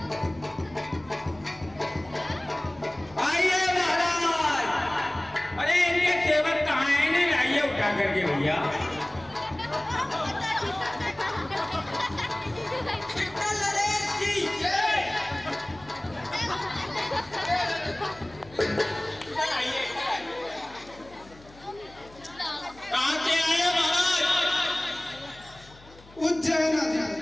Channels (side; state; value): left; noise; hum, 23 dB below the sound